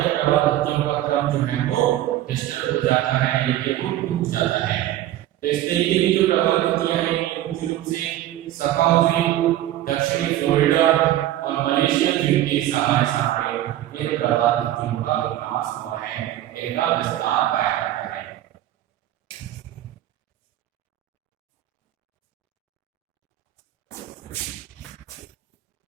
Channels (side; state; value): left; quieter; 13.5 dB